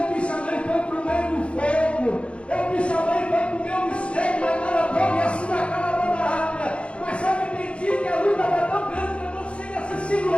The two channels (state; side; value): late; right; 0.060 ms